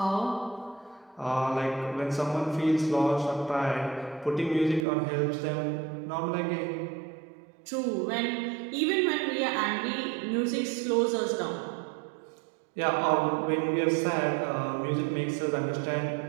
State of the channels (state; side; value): drops out; left; at 4.9 s